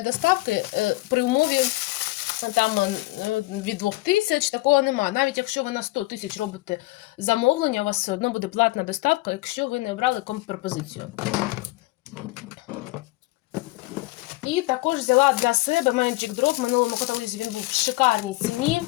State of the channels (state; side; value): quieter; right; 21.1 dB